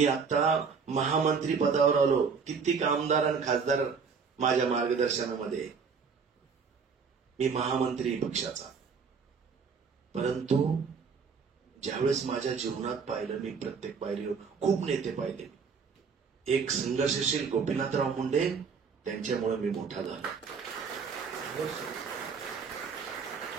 आता महामंत्री पदावर आलो. कित्येक आमदार आणि खासदार माझ्या मार्गदर्शनामध्ये, मी महामंत्री पक्षाचा. परंतु ज्यावेळेस माझ्या जीवनात पाहिलं, मी प्रत्येक पायरीवर खूप नेते पाहिले. एक संघर्षशील गोपीनाथराव मुंडे, त्यांच्यामुळे मी मोठा झालो.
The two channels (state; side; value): quieter; left; 5.6 dB